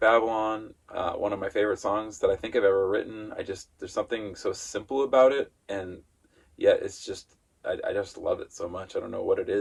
One of my favorite songs that I think I've ever written. There's something so simple about it, and yet it's just, I just love it so much. I don't know what it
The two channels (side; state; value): both; identical; correlation 1.00